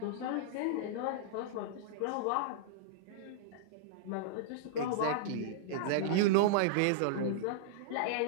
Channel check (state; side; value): different; both; correlation -0.02